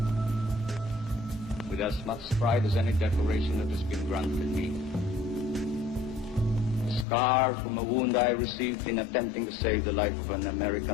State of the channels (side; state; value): right; drops out; at 7.1 s